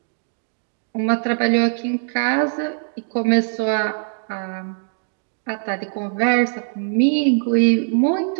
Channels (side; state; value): left; silent; digital silence